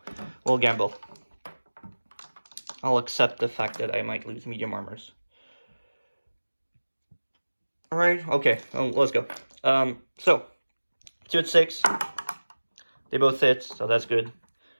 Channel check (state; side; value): inverted; both; correlation -1.00